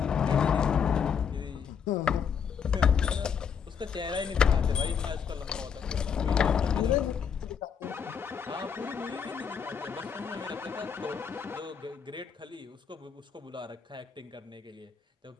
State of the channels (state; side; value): quieter; right; 7.0 dB